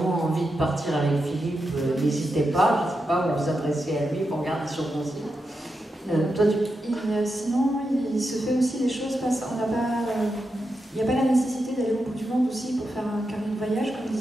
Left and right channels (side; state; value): both; normal; correlation 0.87